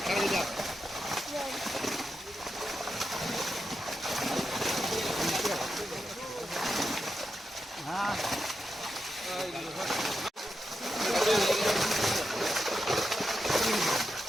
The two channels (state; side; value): normal; both; correlation 0.87